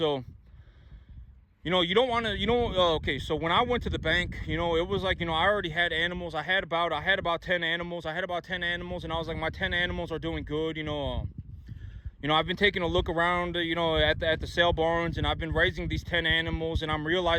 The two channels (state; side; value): identical; both; correlation 1.00